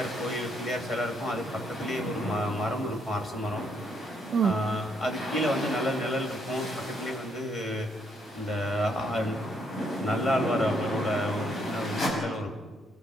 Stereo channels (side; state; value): both; normal; correlation 0.72